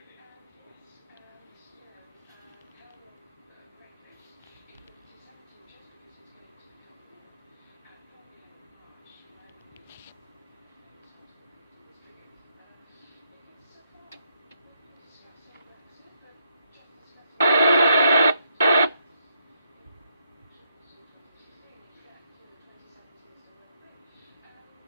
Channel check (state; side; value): inverted; both; correlation -0.76